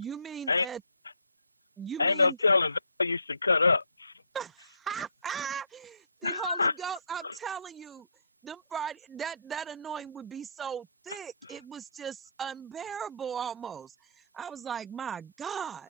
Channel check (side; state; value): both; inverted; correlation -0.62